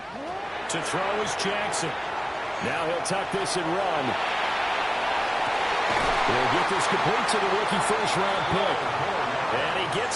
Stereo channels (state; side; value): identical; both; correlation 1.00